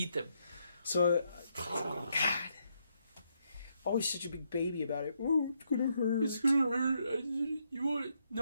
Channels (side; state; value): both; inverted; correlation -0.77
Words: them. So, God, always such a big baby about it. Oh, it's gonna hurt. It's gonna hurt. You want